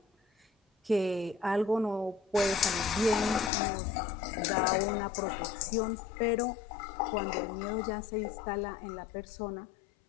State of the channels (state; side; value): drops out; right; at 3.5 s